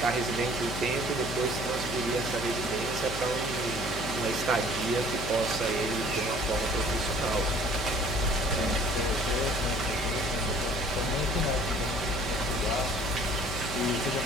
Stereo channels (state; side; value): noise; left; hum, 9 dB below the sound